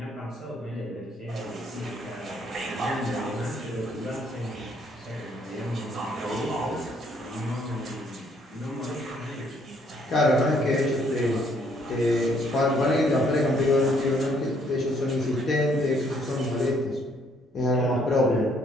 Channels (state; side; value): normal; both; correlation 0.66